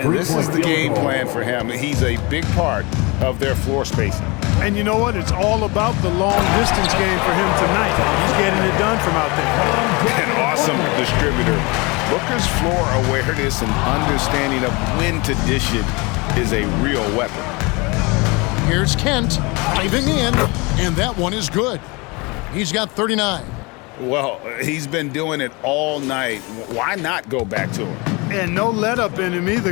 this is the game plan for him. He's a big part of their floor spacing. And you know what? It's all about the long-distance game for him tonight. He's getting it done from out there. An awesome distributor. Booker's floor awareness and understanding of when to dish it is a real weapon. Here's Kent diving in, and that one is good. He's got 39. Well, he's been doing it all night. Why not go back to him? And no let-up in him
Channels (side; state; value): right; quieter; 26.8 dB